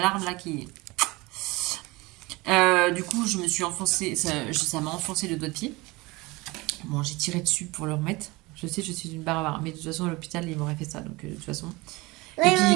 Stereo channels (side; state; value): left; quieter; 22.9 dB